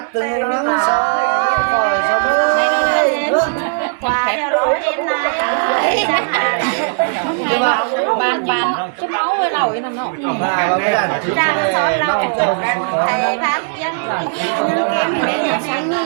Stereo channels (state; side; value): silent; left; digital silence